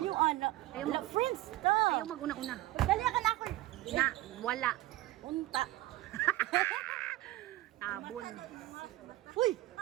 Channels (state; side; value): quieter; left; 17.1 dB